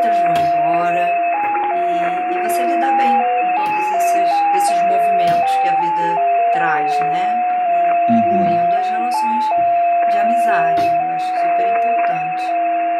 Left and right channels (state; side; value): identical; both; correlation 1.00